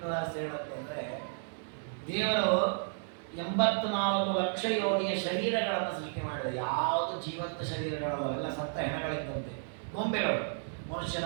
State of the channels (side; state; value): left; silent; digital silence